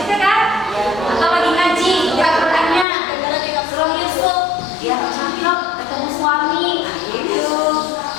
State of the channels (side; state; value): right; drops out; at 2.9 s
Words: kan? Atau lagi ngaji, buka Qurannya, Surah Yusuf, dia cakep, ketemu suami, gitu.